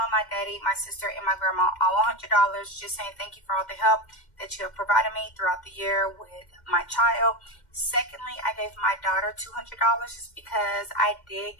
my daddy, my sister, and my grandma all $100 just saying thank you for all the help that you have provided me throughout the year with my child. Secondly, I gave my daughter $200 just because I did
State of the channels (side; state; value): right; late; 2.1 ms